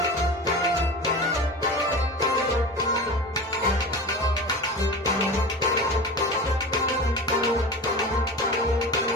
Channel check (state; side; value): normal; both; correlation 0.31